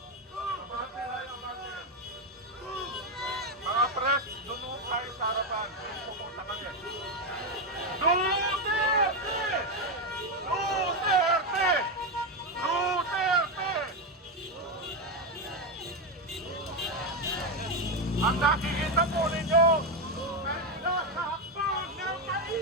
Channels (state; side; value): normal; both; correlation 0.08